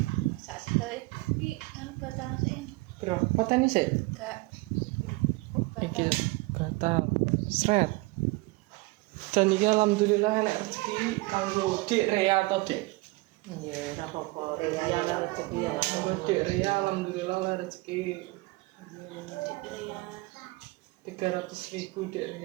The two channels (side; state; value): left; quieter; 23.3 dB